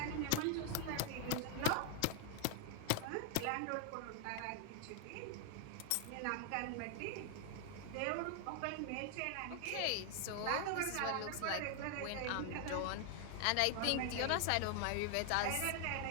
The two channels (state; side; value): different; both; correlation 0.00